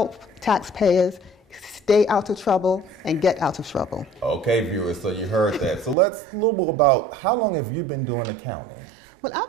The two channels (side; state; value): left; drops out; at 6.0 s